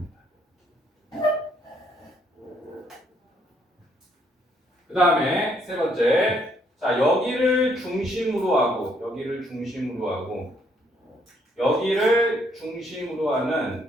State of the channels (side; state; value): both; normal; correlation 0.70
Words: 그 다음에 세 번째, 자 여기를 중심으로 하고 여기를 중심으로